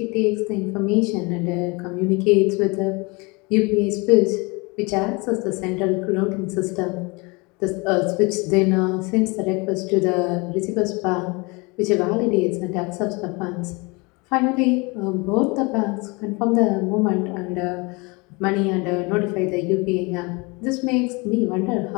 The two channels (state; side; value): quieter; right; 27.6 dB